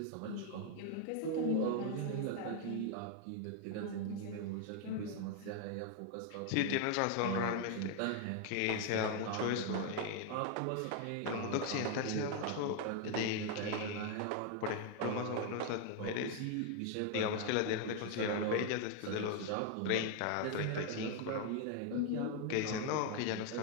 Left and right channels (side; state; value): both; different; correlation 0.01